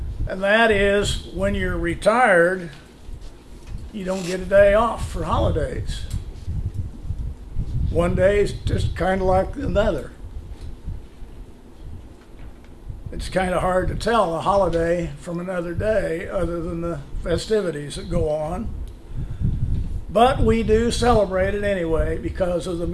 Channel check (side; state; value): both; identical; correlation 1.00